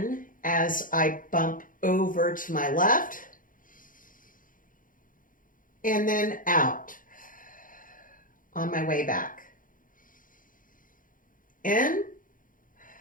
as I bump over to my left, and then out on my way back. In,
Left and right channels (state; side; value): late; right; 0.39 ms